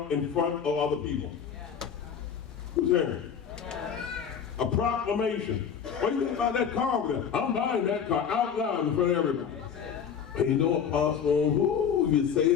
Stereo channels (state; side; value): quieter; right; 7.5 dB